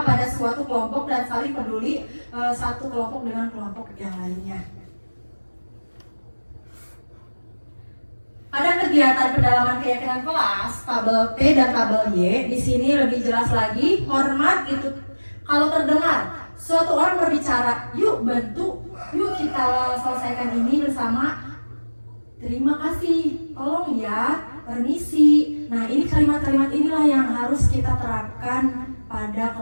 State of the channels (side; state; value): both; inverted; correlation -1.00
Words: pada suatu kelompok dan saling peduli satu kelompok dengan kelompok yang lainnya. Pada kegiatan pendalaman keyakinan kelas, tabel T dan tabel Y, di sini lebih jelas lagi, hormat itu kalau terdengar suatu orang berbicara, yuk bantu, yuk kita selesaikan ini bersama, terima kasih, tolong ya, permisi. Nah, ini kalimat-kalimat inilah yang harus kita terapkan pada